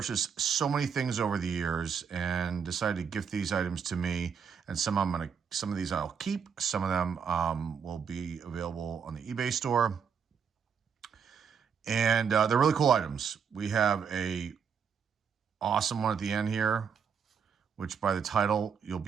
so many things over the years, and decided to gift these items to me. And some of these I'll keep. Some of them will be available on the eBay store, and they're really cool items. We have a awesome one at the end here, which by the title, you'll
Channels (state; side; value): quieter; left; 6.8 dB